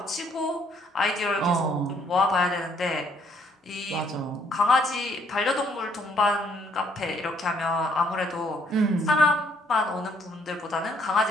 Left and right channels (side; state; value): both; normal; correlation 0.66